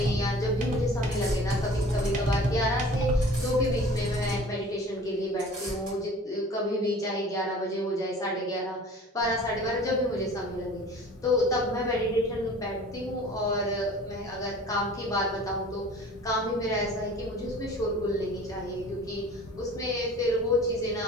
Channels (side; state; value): both; normal; correlation 0.45